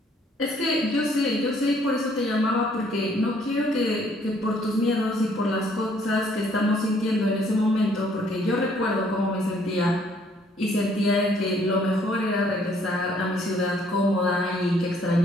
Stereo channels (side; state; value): both; normal; correlation 0.64